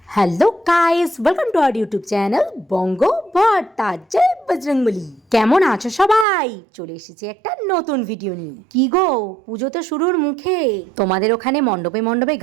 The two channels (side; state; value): left; drops out; at 6.2 s